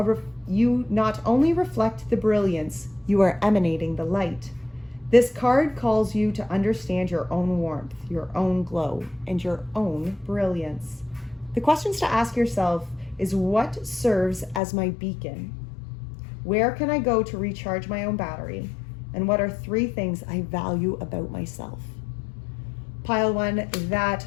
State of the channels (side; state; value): right; drops out; at 14.6 s